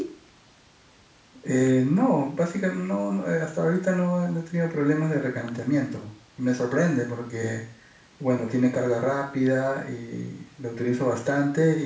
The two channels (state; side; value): identical; both; correlation 1.00